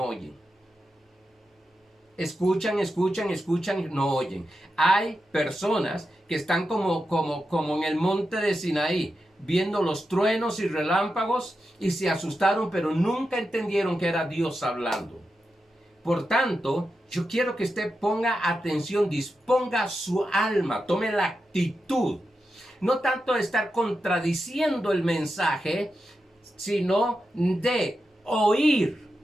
oyen. Escuchan, no oyen. Hay personas que están como en el monte de Sinaí, viendo los truenos y relámpagos y se asustaron, pero nunca entendieron que era Dios hablando. Por tanto, yo quiero que usted ponga atención, disponga su alma, tome la actitud, no tanto de estar contradiciendo el mensaje, sino de oír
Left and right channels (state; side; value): normal; both; correlation 0.89